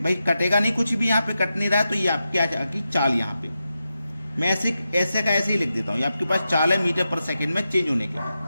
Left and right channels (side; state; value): both; inverted; correlation -0.89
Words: भाई, कटेगा नहीं, कुछ भी यहाँ पे कट नहीं रहा है, तो ये आपकी आ जाएगी चाल। यहाँ पे मैं ऐसे का ऐसे ही लिख देता हूँ, ये आपके पास चाल है मीटर पर सेकंड में चेंज होने के